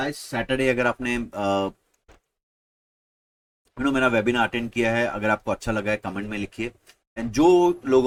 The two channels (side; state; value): both; identical; correlation 1.00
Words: Saturday अगर आपने मेरा webinar attend किया है, अगर आपको अच्छा लगा है कमेंट में लिखिए। एंड जो